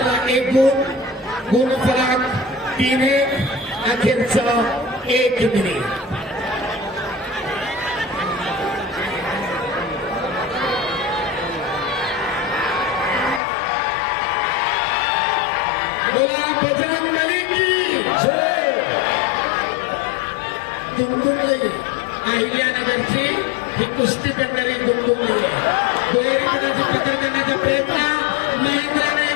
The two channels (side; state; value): right; drops out; at 13.4 s